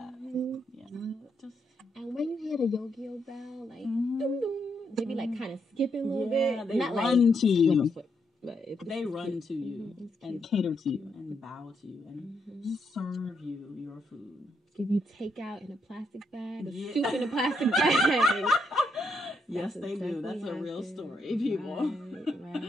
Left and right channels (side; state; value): both; normal; correlation 0.78